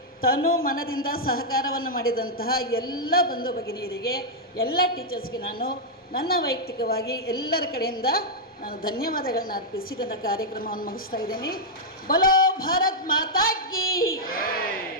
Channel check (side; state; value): both; normal; correlation -0.04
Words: ತನು ಮನದಿಂದ ಸಹಕಾರವನ್ನು ಮಾಡಿದಂತಹ ಎಲ್ಲ ಬಂಧು ಭಗಿನಿಯರಿಗೆ, ಎಲ್ಲ ಟೀಚರ್ಸ್ಗೆ ನಾನು ನನ್ನ ವೈಯಕ್ತಿಕವಾಗಿ ಎಲ್ಲರ ಕಡೆಯಿಂದ ನಾನು ಧನ್ಯವಾದಗಳನ್ನ ಅರ್ಪಿಸಿ ನನ್ನ ಕಾರ್ಯಕ್ರಮವನ್ನು ಮುಗಿಸ್ತಾ ಇದ್ದೀನಿ. ಬೋಲೋ ಭಾರತ್ ಮಾತಾ ಕಿ.